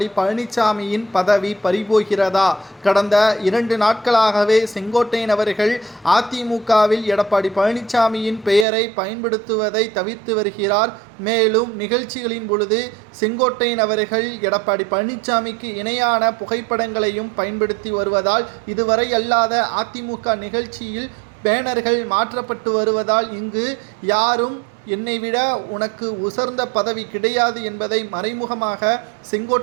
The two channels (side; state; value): left; drops out; at 8.7 s